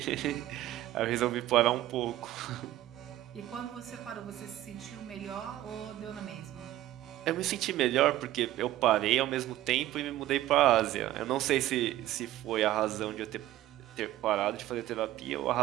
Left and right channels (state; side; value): quieter; left; 14.5 dB